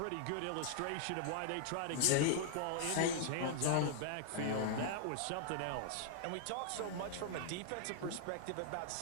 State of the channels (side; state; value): both; different; correlation -0.01